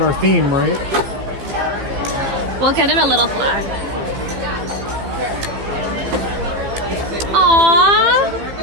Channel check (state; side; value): late; left; 15 ms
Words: theme, right? We'll get him a little flag. Aww.